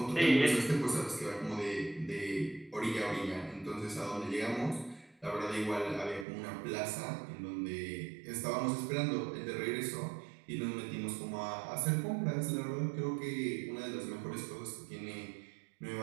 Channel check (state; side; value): drops out; left; at 6.2 s